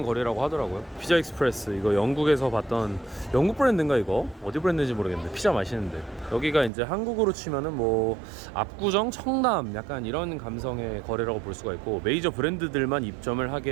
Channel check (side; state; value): left; drops out; at 6.7 s